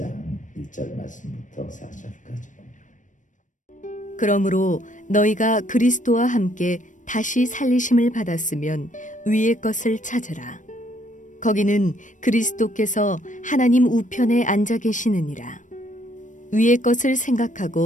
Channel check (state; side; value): late; right; 0.37 ms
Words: 1절 말씀부터 4절까지. 그러므로 너희가 그리스도와 함께 다시 살리심을 받았으면 위의 것을 찾으라. 거기는 그리스도께서 하나님 우편에 앉아 계시느니라. 위의 것을